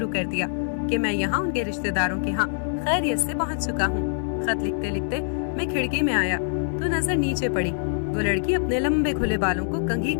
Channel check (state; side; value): silent; right; digital silence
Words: कर दिया कि मैं यहाँ उनके रिश्तेदारों के यहाँ खैरियत से पहुँच चुका हूँ। खत लिखते लिखते मैं खिड़की में आया तो नजर नीचे पड़ी। वो लड़की अपने लंबे खुले बालों को कंघी